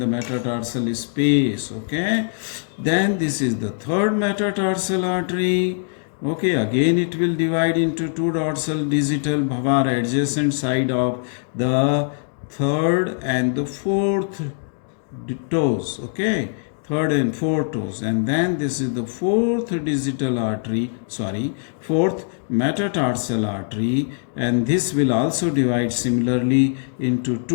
metatarsal space, okay. Then this is the third metatarsal artery, okay. Again it will divide into two dorsal digital bhavar adjacent side of the third and the fourth toes, okay, third and fourth toes, and then this is the fourth metatarsal artery, and this will also divide similarly into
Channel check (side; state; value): right; silent; digital silence